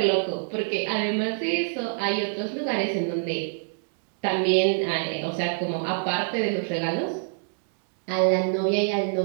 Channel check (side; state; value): left; silent; digital silence